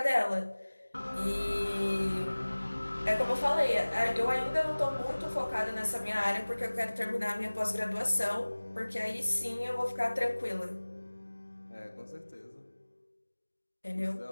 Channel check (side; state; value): both; inverted; correlation -1.00